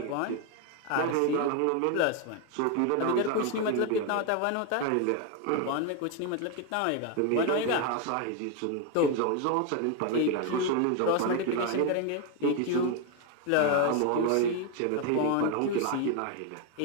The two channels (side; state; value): both; different; correlation 0.01